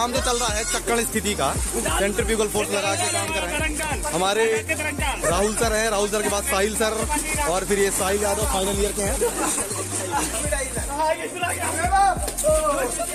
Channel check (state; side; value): identical; both; correlation 1.00